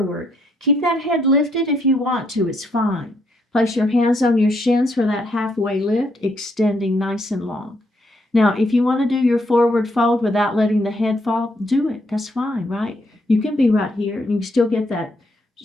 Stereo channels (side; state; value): both; normal; correlation 0.74